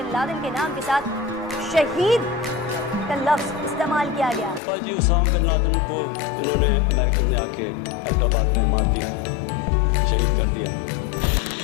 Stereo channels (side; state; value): right; drops out; at 4.6 s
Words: लादेन के नाम के साथ शहीद का लफ्ज इस्तेमाल किया गया। जी उसामा बिन लादेन को इन्होंने अमेरिकन ने आके हैदराबाद में मार दिया, शहीद कर दिया।